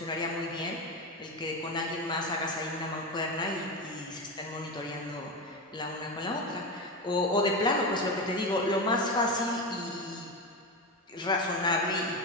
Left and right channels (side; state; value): both; normal; correlation 0.18